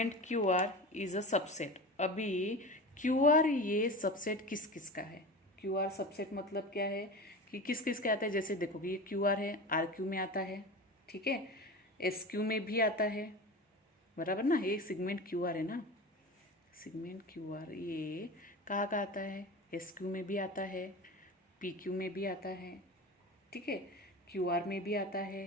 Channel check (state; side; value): normal; both; correlation 0.30